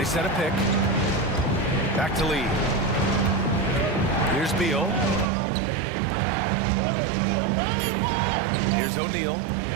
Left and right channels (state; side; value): drops out; left; at 5.3 s